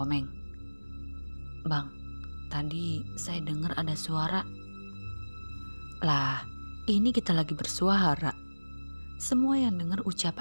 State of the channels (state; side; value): inverted; both; correlation -1.00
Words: "Bang, tadi saya dengar ada suara." "Lah, ini kita lagi bersuara." Semua yang dengar